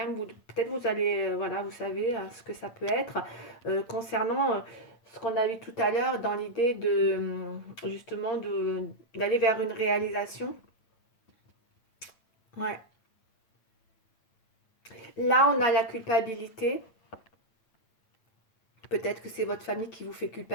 peut-être vous allez, voilà, vous savez ce que ça peut être. Concernant ce qu'on a vu tout à l'heure dans l'idée de, justement, d'aller vers une réalisation. Ouais. Là, on a la culpabilité. Peut-être que c'est votre famille qui vous fait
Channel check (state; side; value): late; right; 8.9 ms